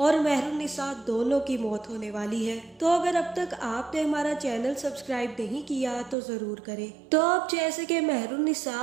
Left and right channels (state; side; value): drops out; left; at 6.2 s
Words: मेहरुन्निसा दोनों की मौत होने वाली है। तो अगर अब तक आपने हमारा चैनल सब्सक्राइब नहीं किया तो जरूर करें। तो अब जैसे कि मेहरुन्निसा